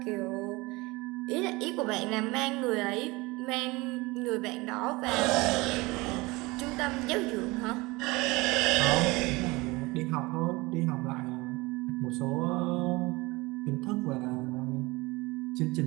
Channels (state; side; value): quieter; left; 23.1 dB